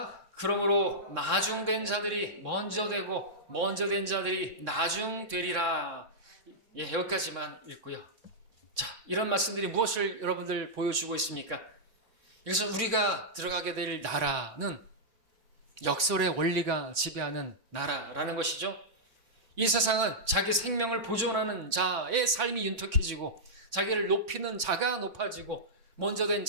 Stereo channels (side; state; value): left; late; 3.6 ms